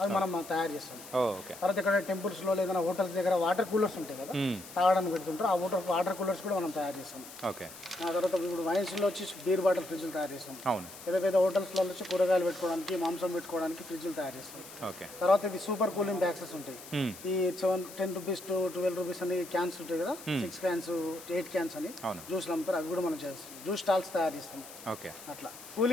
మనం తయారు చేస్తాం. తర్వాత ఇక్కడ టెంపుల్స్లో లేదా హోటల్స్ దగ్గర వాటర్ కూలర్స్ ఉంటాయి కదా, తాగడానికి పెడుతుంటారు. ఆ వాటర్ కూలర్స్ కూడా మనం తయారు చేస్తాం. ఓకే. ఆ తర్వాత ఇప్పుడు వైన్స్లో వచ్చి బీర్ బాటిల్ ఫ్రిడ్జ్లు తయారు చేస్తాం. అవును. పెద్ద హోటల్స్లో వచ్చి కూరగాయలు పెట్టుకోవడానికి, మాంసం పెట్టుకోవడానికి ఫ్రిడ్జ్లు తయారు చేస్తాం. ఓకే. తర్వాత ఇది సూపర్ కూలింగ్ బ్యాక్సెస్ ఉంటాయి. ఈ 10 రూపీస్ to 12 రూపీస్ అని క్యాన్స్ ఉంటాయి కదా, 6 క్యాన్స్ 8 క్యాన్స్ అని జ్యూస్లు అమ్ముతారు. అవి కూడా మనం చేస్తాం. జ్యూస్ స్టాల్స్ తయారు చేస్తాం. ఓకే. అట్లా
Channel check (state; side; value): noise; left; hiss, 15 dB below the sound